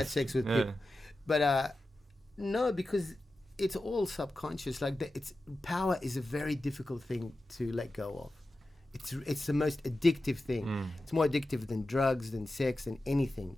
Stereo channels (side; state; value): both; normal; correlation 0.93